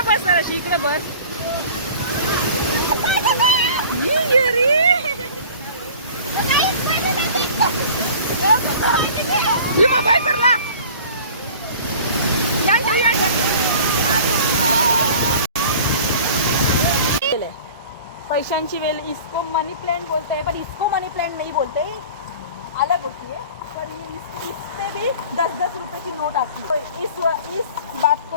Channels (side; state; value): both; inverted; correlation -0.43